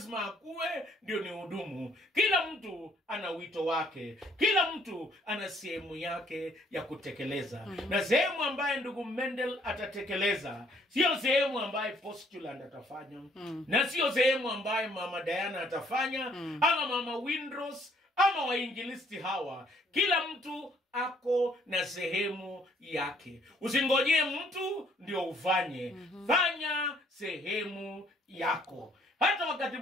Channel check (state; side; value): normal; both; correlation 0.64